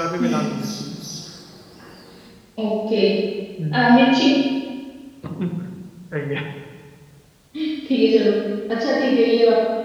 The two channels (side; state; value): both; identical; correlation 1.00